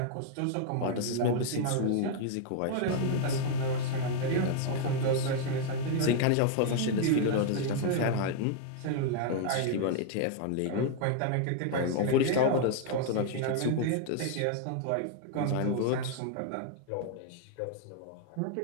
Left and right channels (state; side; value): different; both; correlation 0.00